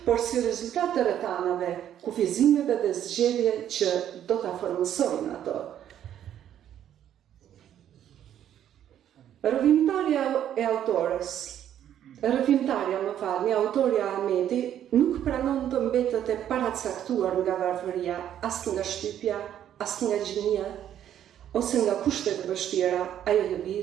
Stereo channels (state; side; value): quieter; left; 10.6 dB